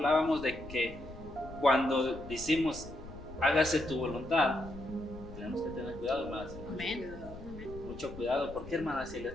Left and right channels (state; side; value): noise; left; rumble, 15 dB below the sound